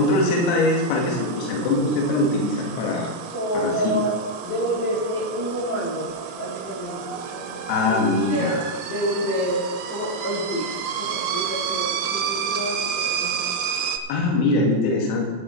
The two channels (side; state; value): right; late; 23 ms